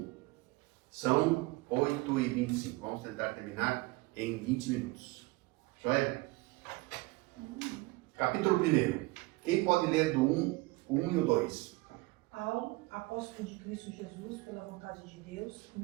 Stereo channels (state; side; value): quieter; left; 22.5 dB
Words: São 8h25. Vamos tentar terminar em 20 minutos. Joia? Capítulo 1. Quem pode ler do 1 e o 2? Paulo, apóstolo de Cristo Jesus, pela vontade de Deus, e